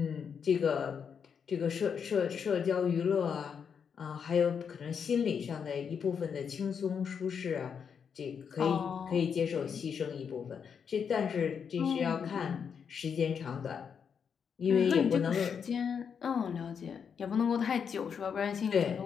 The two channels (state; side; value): quieter; right; 6.9 dB